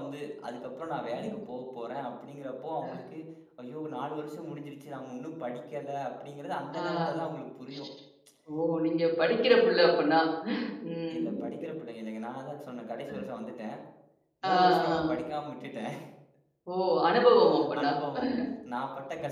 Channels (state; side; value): identical; both; correlation 1.00